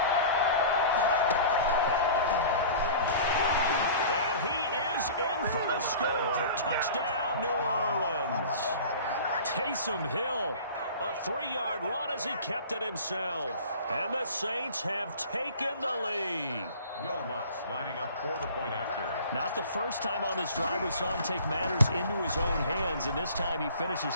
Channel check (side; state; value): both; inverted; correlation -0.42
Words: In for the score. Touchdown, New Orleans. Taysom Hill, a 3-yard run as he kept it himself. And the Saints have taken the lead. Will Lutz lining up for the point after. Not the first time on this drive we saw him take matters into his own hands, and this time he finishes